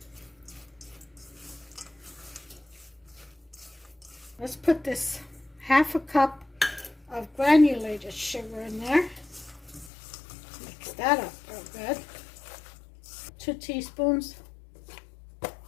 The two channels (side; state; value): right; drops out; at 9.9 s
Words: Let's put this half a cup of granulated sugar in there. Mix that up real good. 2 teaspoons